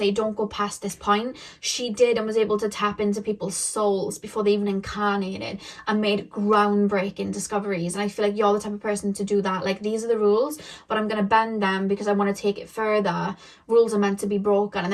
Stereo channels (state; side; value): identical; both; correlation 1.00